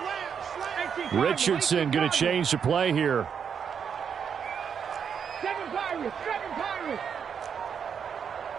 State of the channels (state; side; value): quieter; left; 7.2 dB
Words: Richardson going to change the play here.